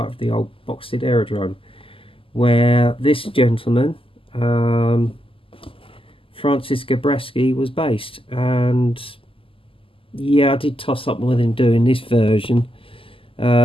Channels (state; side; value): late; right; 0.26 ms